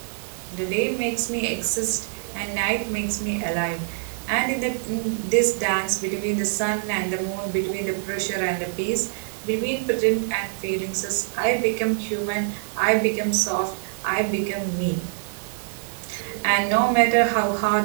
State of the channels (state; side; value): silent; left; digital silence